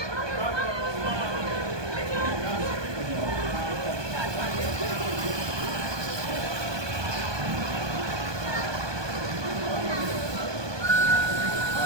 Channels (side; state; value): left; late; 1.2 ms